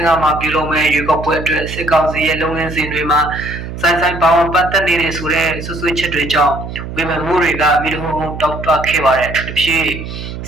မှာပြုလုပ်မဲ့ရွေးကောက်ပွဲအတွက်စစ်ကောင်စီရဲ့လုပ်ငန်းစဉ်တွေမှာဆိုင်ပေါင်းပတ်သက်နေတဲ့ဆိုတဲ့ဆွဆွချက်တွေကြောင့်ဝေဖန်မှုတွေကမိတို့တောက်တွခဲ့ပါတယ်သူတို့ဖြစ်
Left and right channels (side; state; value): right; noise; hum, 9 dB below the sound